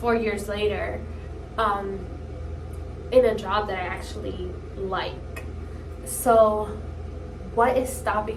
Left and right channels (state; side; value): identical; both; correlation 1.00